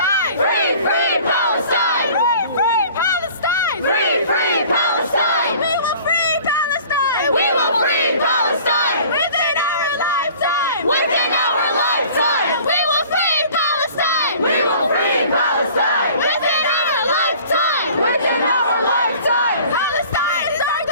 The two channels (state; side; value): inverted; both; correlation -0.48